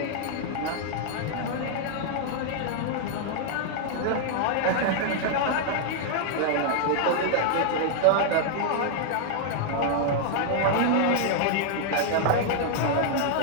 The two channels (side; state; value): both; different; correlation -0.01